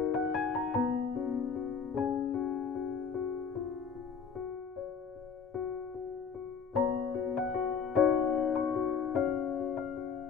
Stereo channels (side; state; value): right; quieter; 6.1 dB